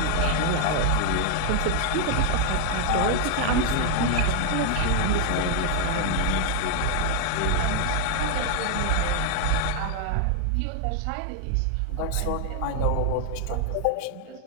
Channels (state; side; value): different; both; correlation 0.00